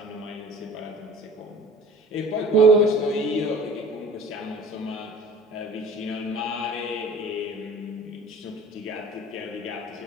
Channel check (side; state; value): both; normal; correlation 0.45